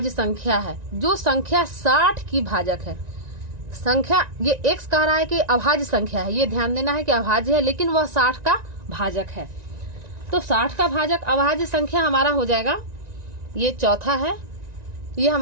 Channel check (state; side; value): late; left; 1.9 ms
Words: संख्या है जो संख्या 60 की भाजक है। संख्या ये एक्स कह रहा है कि अभाज्य संख्या है, ये ध्यान देना है कि अभाज्य है, लेकिन वह 60 का भाजक है। तो 60 का भाजक अभाज्य संख्या हमारा हो जाएगा, ये चौथा है, ये